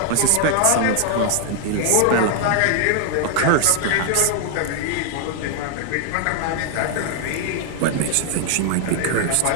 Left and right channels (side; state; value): both; different; correlation 0.00